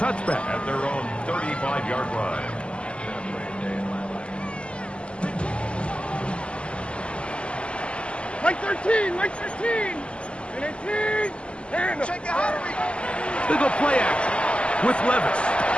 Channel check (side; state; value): right; late; 0.054 ms